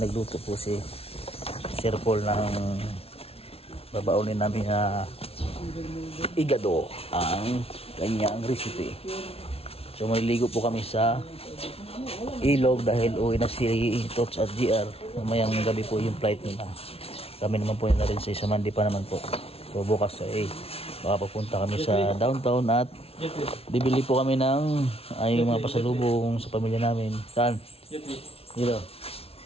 po si Sir Paul ng babaunin namin na igado ang kanyang recipe. So maliligo po kami sa ilog dahil uwi na si Tots at GR. Mamayang gabi po yung flight nila. Kami naman po na rin sa Isamandi pa naman po. So bukas ay baka papunta kami sa downtown at bibili po kami ng ay mga pasalubong sa pamilya namin. Saan? Dito.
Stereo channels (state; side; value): late; right; 0.29 ms